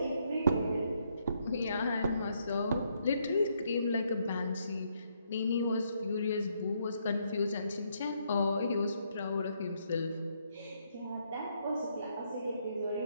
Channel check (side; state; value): both; inverted; correlation -0.74